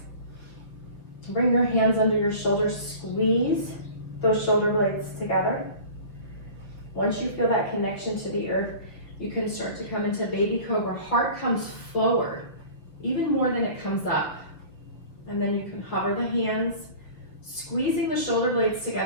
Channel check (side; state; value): right; late; 6.4 ms